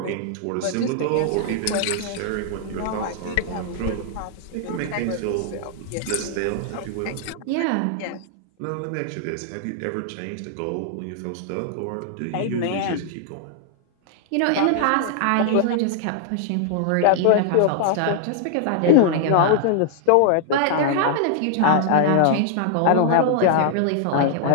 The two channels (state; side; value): different; both; correlation -0.01